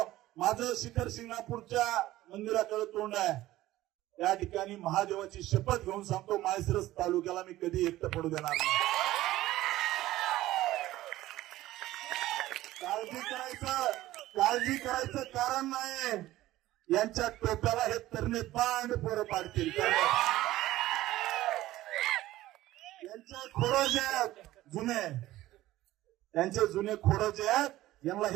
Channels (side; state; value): left; quieter; 15.8 dB